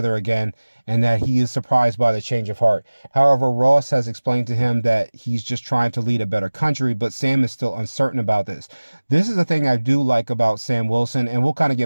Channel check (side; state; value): both; inverted; correlation -1.00